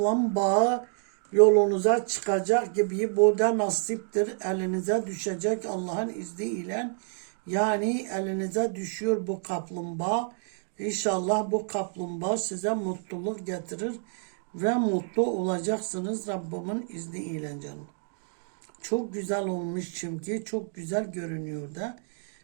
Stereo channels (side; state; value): left; silent; 59 dB below the other